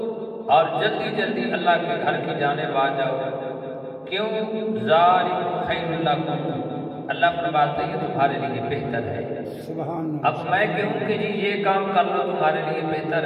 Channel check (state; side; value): identical; both; correlation 1.00